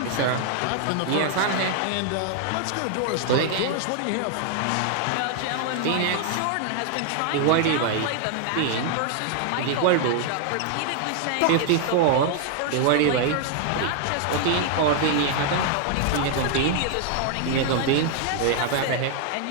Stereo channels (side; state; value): both; different; correlation 0.00